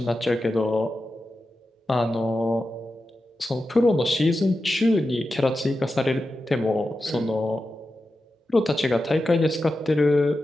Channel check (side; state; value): both; normal; correlation 0.91